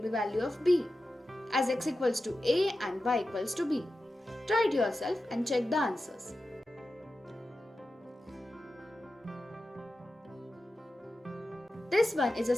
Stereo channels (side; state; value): both; normal; correlation 0.92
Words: value of b, as x equals to a and y equals to b. Try it yourself and check the answers. This one is a